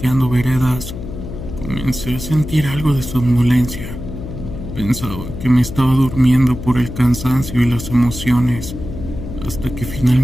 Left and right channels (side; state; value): left; noise; hum, 9 dB below the sound